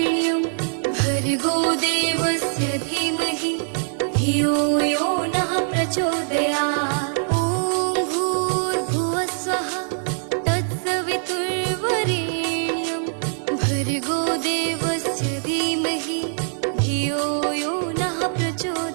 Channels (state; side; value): silent; left; digital silence